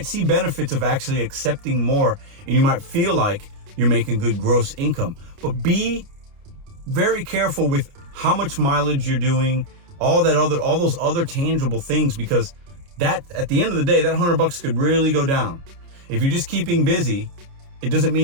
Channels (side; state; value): left; late; 29 ms